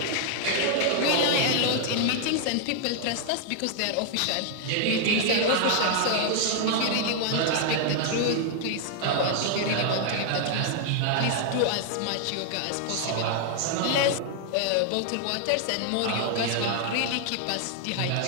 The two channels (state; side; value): different; both; correlation 0.00